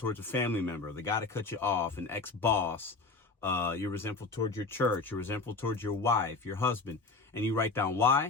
a family member, the guy that cut you off, an ex-boss. You're resentful towards your church. You're resentful towards your wife, your husband. And you write down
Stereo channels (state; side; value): quieter; right; 4.0 dB